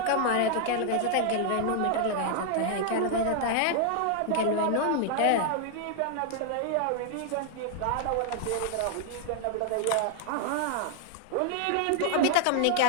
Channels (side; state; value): both; different; correlation 0.00